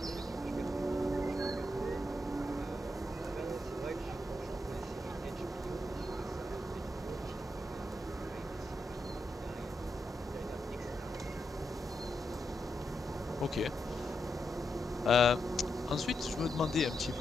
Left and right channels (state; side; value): normal; both; correlation 0.84